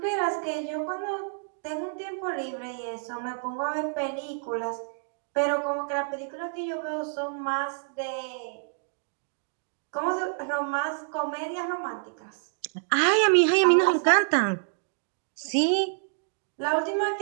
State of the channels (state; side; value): silent; left; digital silence